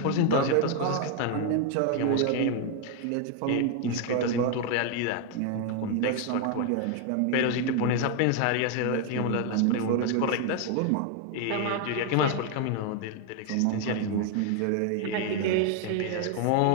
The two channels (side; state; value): both; different; correlation 0.01